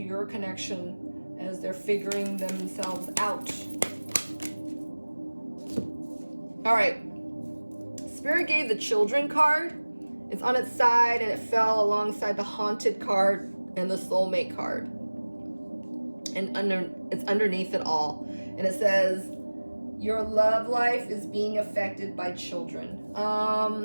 connection as they're figuring themselves out? All right. Spirit gave the children card. It's on its side and it fell alongside the haunted card and the soulmate card. And it's underneath it all. And it says, your love life is being affected by children.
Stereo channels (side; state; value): both; inverted; correlation -1.00